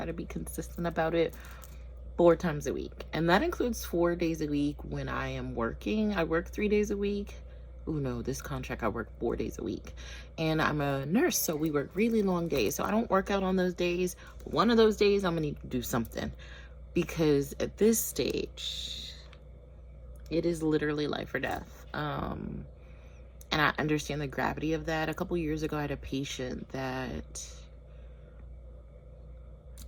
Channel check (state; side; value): identical; both; correlation 1.00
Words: to be consistent about it 4 times a week. And that includes 4 days a week when I am working. I work 3 days a week. Oh no, this contract I work 4 days a week. And I'm a nurse, so we work really long days. So I don't work out on those days. One of those days I'm gonna need to do something, because at this stage it is literally life or death. And I understand the gravity of that. A couple years ago I had a patient that,